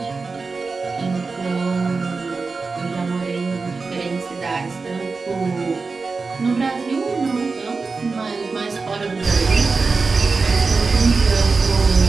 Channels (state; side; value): quieter; left; 4.3 dB